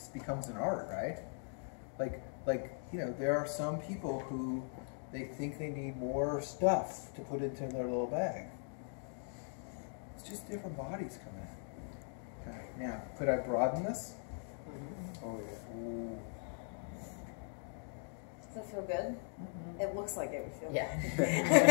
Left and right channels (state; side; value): silent; right; 51 dB below the other